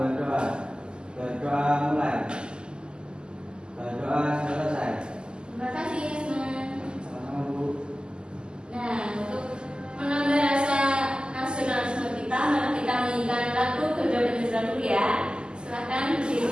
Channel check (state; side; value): late; left; 0.047 ms